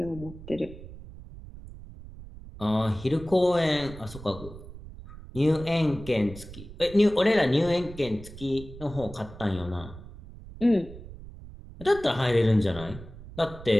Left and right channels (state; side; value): noise; right; rumble, 15 dB below the sound